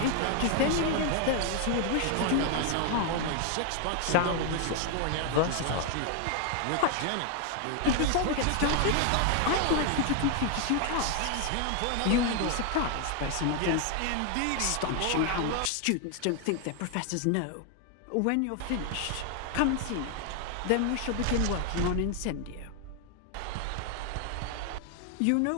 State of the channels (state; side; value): different; both; correlation 0.00